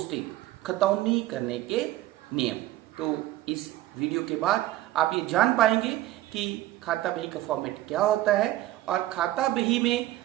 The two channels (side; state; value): left; quieter; 15.5 dB